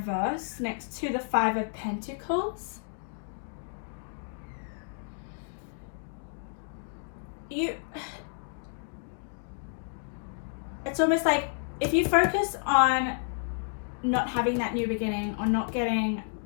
next to the Five of Pentacles, it's almost like if you focus on not having that new beginning or not getting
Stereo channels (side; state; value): right; silent; digital silence